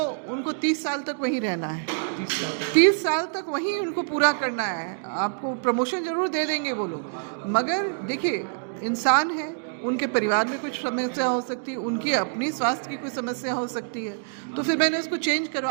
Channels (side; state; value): left; silent; digital silence